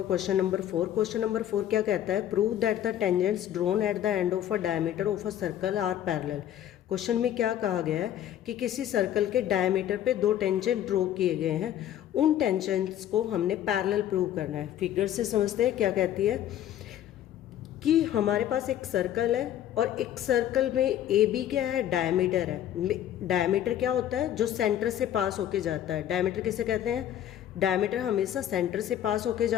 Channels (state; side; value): quieter; right; 11.3 dB